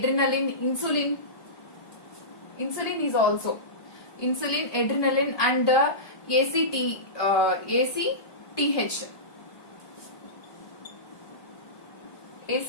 insulin. Insulin is also insulin, adrenaline, and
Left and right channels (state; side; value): late; right; 1.2 ms